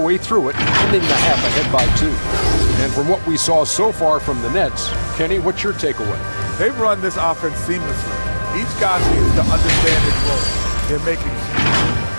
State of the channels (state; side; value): inverted; both; correlation -1.00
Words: through it, ending the half ahead by 2. And from what we saw so far from the Nets, Kenny, what's your takeaway? They've run this offense seamlessly. Each guy seems to understand his role. They're making